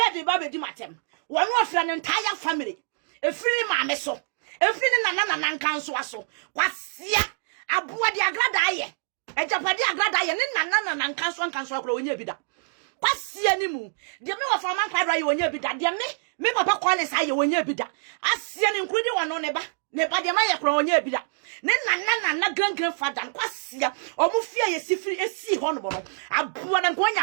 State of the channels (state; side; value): silent; left; digital silence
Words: the Baby Dimatem. One was an entire family. A free mammeso. A free Nana council. Quasia a boy de agradaye. A Japadi agradaye, and Nana and council growing your bidder. Quasia nimu. The middle of a man cried when you bidder. Dear me, Papa Qualis, I when you bidder. I see an including one on neighbor. Never the Maya crown ye bida. Nana grandfather, Quasia, or Mufia, a sea honorable. A poor and going